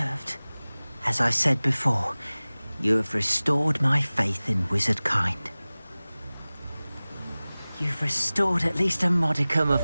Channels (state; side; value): inverted; both; correlation -0.99